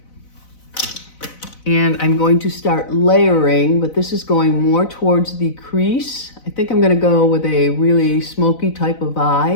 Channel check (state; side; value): late; right; 4.0 ms